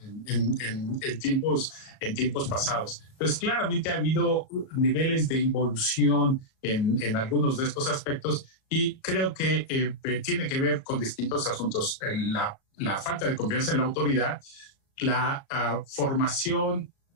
en tiempos pasados. Entonces, claramente ha habido niveles de involución en algunos de estos aspectos y creo que tiene que ver con distintos asuntos. La falta de confianza en la autoridad, la formación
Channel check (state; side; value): late; right; 37 ms